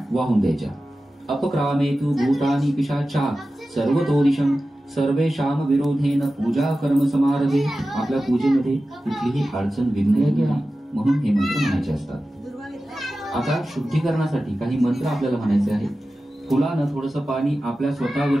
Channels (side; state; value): both; normal; correlation 0.94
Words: वाहून द्यायच्या. अपक्रामेतु भूतानि पिशाचा सर्वतोदिशं सर्वेषां विरोधेन पूजा कर्म समारभे. आपल्या पूजेमध्ये कुठलीही अडचण विघ्न येणार म्हणून हे मंत्र म्हणायचे असतात. आता शुद्धीकरणासाठी काही मंत्र आपल्याला म्हणायचे आहेत. फुलानं थोडंसं पाणी आपल्या